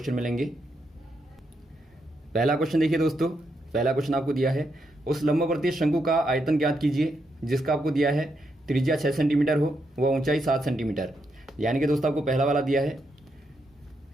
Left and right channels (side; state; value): both; normal; correlation 0.81